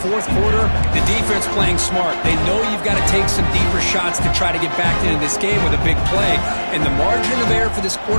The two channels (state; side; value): inverted; both; correlation -1.00